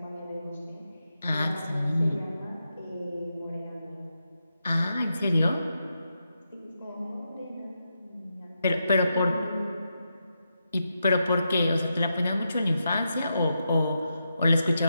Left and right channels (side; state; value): both; inverted; correlation -0.86